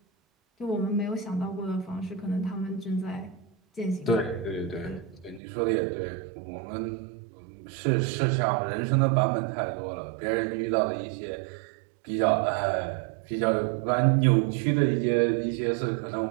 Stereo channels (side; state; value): left; drops out; at 5.4 s